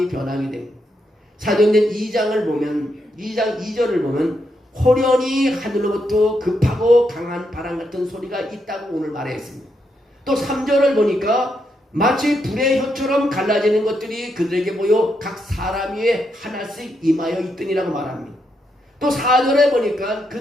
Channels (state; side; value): normal; both; correlation 0.80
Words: 변하게 됩니다. 사도행전 2장을 보면 2장 2절을 보면 호련히 하늘로부터 급하고 강한 바람 같은 소리가 있다고 오늘 말했습니다. 또 3절을 보니까 마치 불의 혀처럼 갈라지는 것들이 그들에게 보여 각 사람 위에 하나씩 임하여 있더니라고 말합니다. 또 4절에 보니까